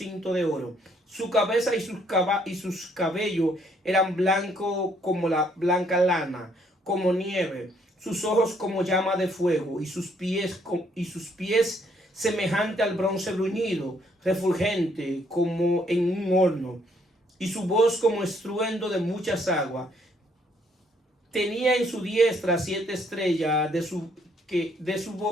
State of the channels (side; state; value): both; normal; correlation 0.68